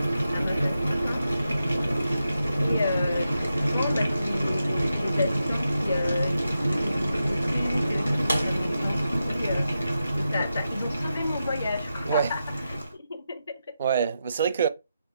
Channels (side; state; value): both; inverted; correlation -0.88